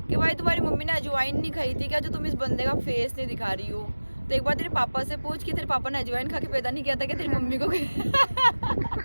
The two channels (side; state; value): both; inverted; correlation -1.00